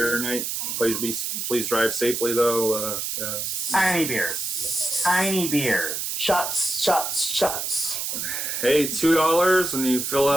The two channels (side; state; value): right; noise; hiss, 3 dB below the sound